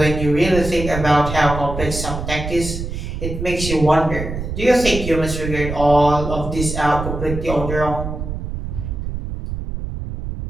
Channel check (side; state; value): right; noise; rumble, 6 dB below the sound